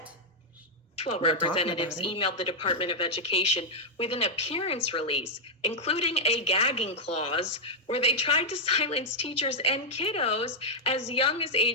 12 representatives emailed the Department of Education with an appearance release, including a gagging clause where they tried to silence teachers and kiddos as young as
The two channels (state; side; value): normal; both; correlation -0.03